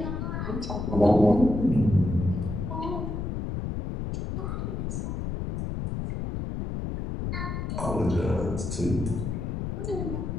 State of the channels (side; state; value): left; noise; rumble, 3 dB below the sound